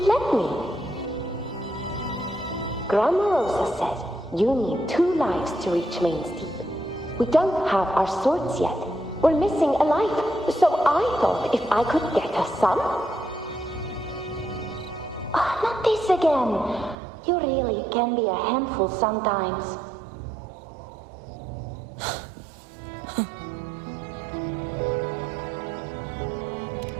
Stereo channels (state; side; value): drops out; left; at 16.9 s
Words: me. Grandma Rosa said you need 2 lives to reach Main's Deep. We don't have our swords yet. We're missing a life, so I thought if I could get us some... not this again. You really can be a handful sometimes.